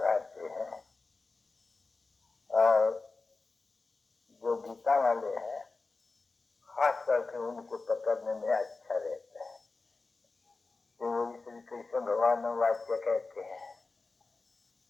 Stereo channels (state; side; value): quieter; right; 3.8 dB